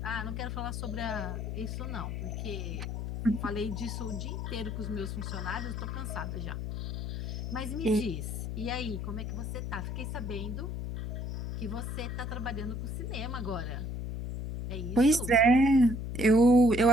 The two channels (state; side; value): noise; left; hum, 4 dB below the sound